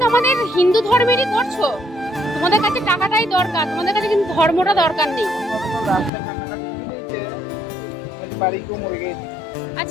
আমাদের হিন্দু ধর্মেরই করছো। তোমাদের কাছে টাকাটাই দরকার, তোমাদের কাছে কিন্তু ধর্মটা দরকার নেই।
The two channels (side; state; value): right; drops out; at 6.1 s